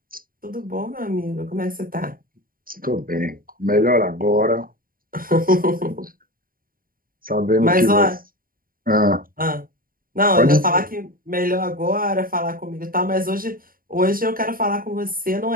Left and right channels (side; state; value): left; late; 0.41 ms